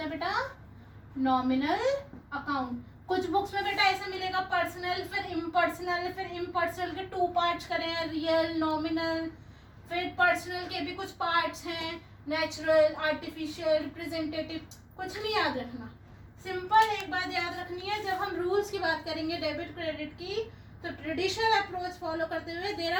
है बेटा? Nominal account. कुछ बुक्स में बेटा ऐसा मिलेगा पर्सनल, फिर इम्पर्सनल, फिर इम्पर्सनल के 2 पार्ट्स करें, रियल, नॉमिनल। फिर पर्सनल के भी कुछ पार्ट्स हैं, नेचुरल, आर्टिफिशियल, रिप्रेजेंटेटिव। कुछ नहीं याद रखना, सिंपल एक बात याद रखनी है। जब हम रूल्स की बात करेंगे डेबिट क्रेडिट की, तो ट्रेडिशनल अप्रोच फॉलो करते हुए there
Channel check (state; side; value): identical; both; correlation 1.00